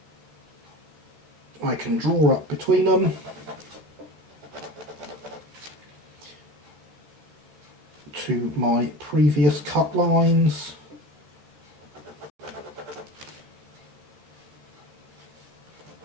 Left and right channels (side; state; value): left; late; 13 ms